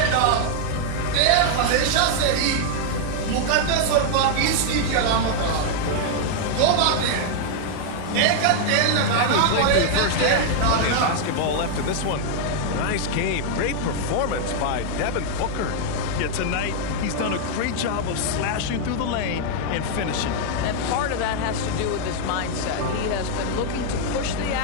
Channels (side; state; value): both; different; correlation 0.00